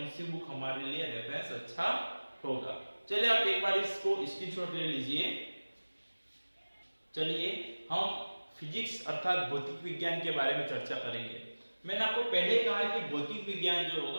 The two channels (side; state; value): both; inverted; correlation -1.00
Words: सी बुक हमारे लिए रेफरेंस अच्छा होगा। चलिए आप एक बार इसको स्क्रीनशॉट ले लीजिए। चलिए हम फिजिक्स अर्थात भौतिक विज्ञान के बारे में चर्चा करेंगे। मैंने आपको पहले कहा है कि भौतिक विज्ञान जो